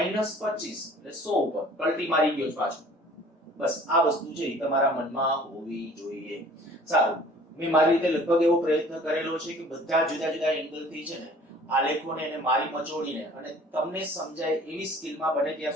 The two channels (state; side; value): normal; both; correlation 0.50